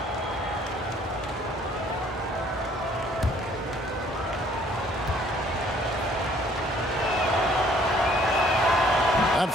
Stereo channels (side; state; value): both; normal; correlation 0.60